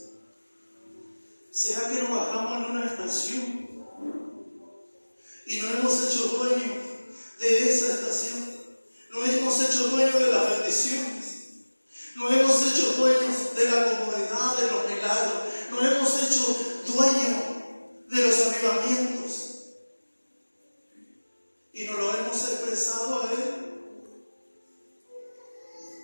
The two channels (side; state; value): both; inverted; correlation -1.00